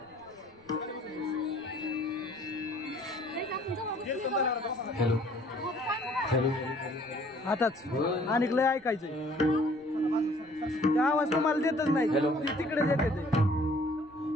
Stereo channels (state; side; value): noise; right; rumble, 29 dB below the sound